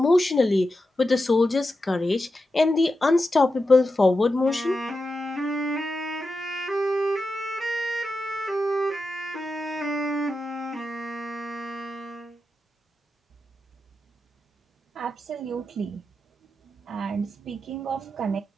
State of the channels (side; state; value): both; normal; correlation 0.90